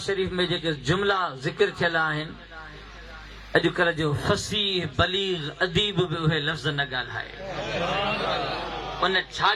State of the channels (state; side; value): identical; both; correlation 1.00